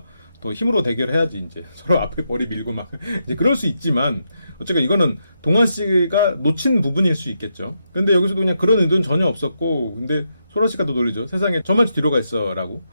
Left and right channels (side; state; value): both; inverted; correlation -0.83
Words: 더 힘으로 대결해야지 이제 서로 앞에 머리 밀고 막 이제 그럴 수 있지만, 어쨌든 이거는 동환 씨가 놓친 부분일 수 있겠죠. 근데 여기서도 그냥 그런 의도는 전혀 없었고, 근데 소라 씨가 더 놀리죠. 세상에 저만 뒤로 가 있어 라고.